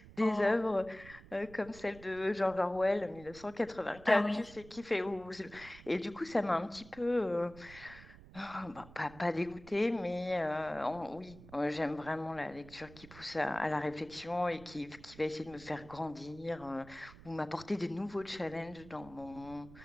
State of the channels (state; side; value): noise; right; rumble, 19 dB below the sound